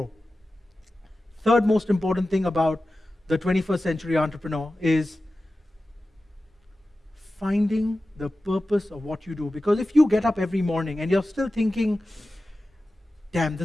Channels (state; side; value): normal; both; correlation 0.95